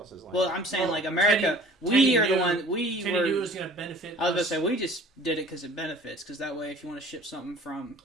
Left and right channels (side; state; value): both; normal; correlation 0.48